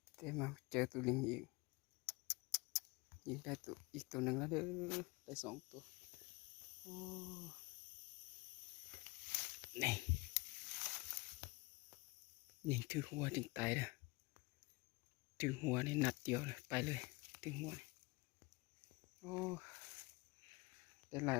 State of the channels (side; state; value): right; quieter; 25.1 dB